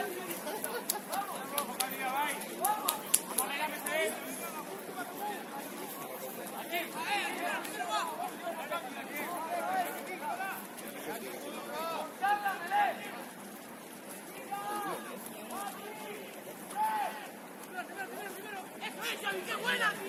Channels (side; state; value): both; identical; correlation 1.00